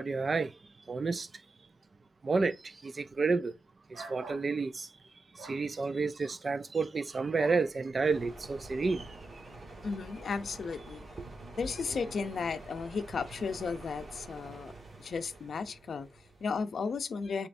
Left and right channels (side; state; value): both; normal; correlation 0.87